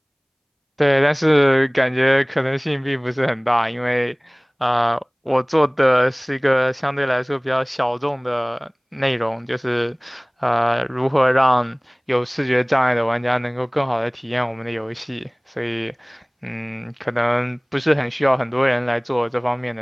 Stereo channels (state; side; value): identical; both; correlation 1.00